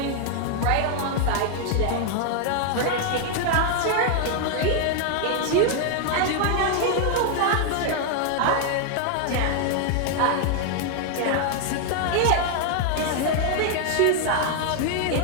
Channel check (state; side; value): different; both; correlation 0.00